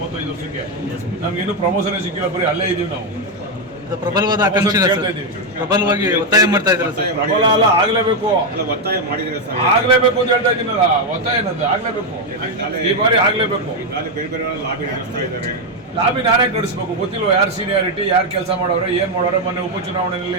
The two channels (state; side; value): normal; both; correlation 0.04